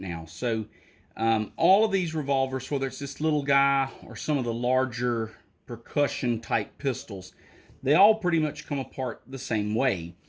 So, all of these revolvers, whether it's this little guy or some of the larger percussion type pistols, they all pretty much come apart the same way.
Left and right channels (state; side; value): identical; both; correlation 1.00